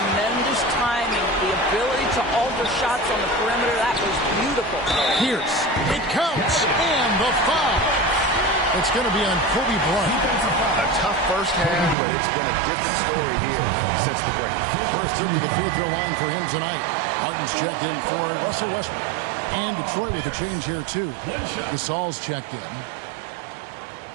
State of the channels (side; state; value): left; drops out; at 12.0 s